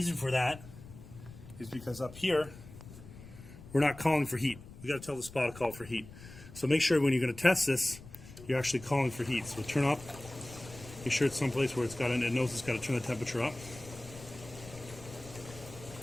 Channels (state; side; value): noise; left; rumble, 17 dB below the sound